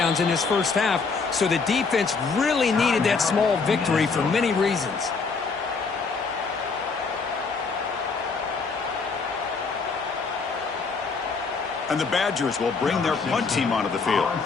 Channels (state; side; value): quieter; right; 4.7 dB